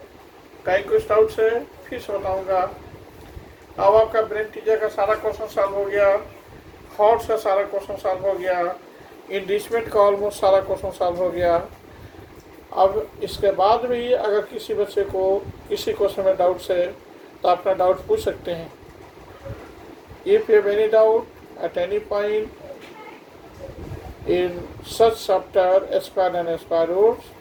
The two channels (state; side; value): identical; both; correlation 1.00